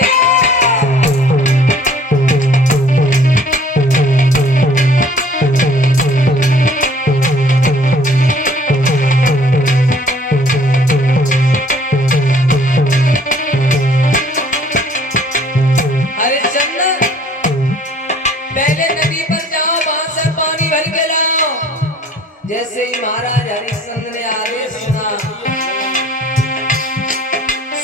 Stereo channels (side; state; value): both; normal; correlation 0.55